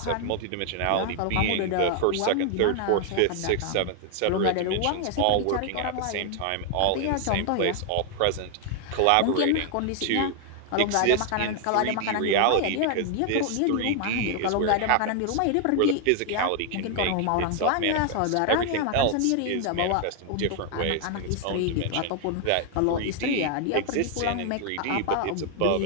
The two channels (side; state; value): both; different; correlation 0.00